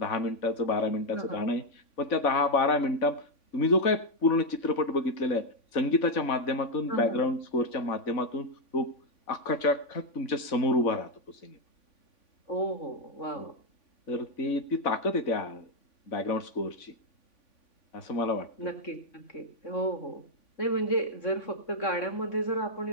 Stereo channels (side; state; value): right; late; 3.5 ms